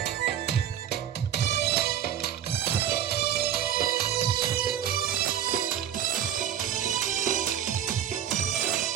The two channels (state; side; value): quieter; left; 9.9 dB